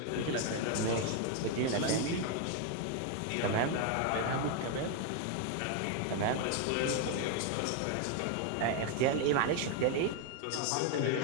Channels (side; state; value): both; different; correlation 0.01